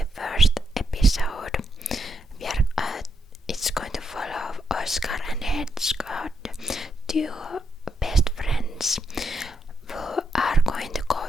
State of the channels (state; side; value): normal; both; correlation 0.80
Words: first episode, it's going to follow Oscar and Hedgehog, two best friends who are going to go